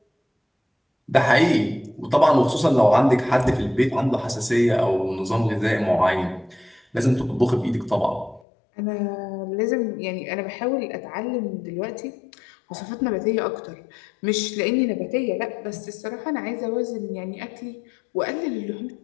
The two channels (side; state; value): right; drops out; at 8.4 s